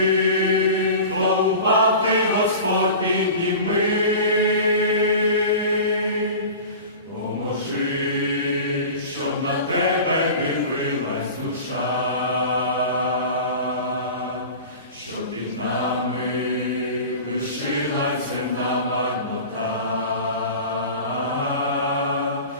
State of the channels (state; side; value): inverted; both; correlation -0.36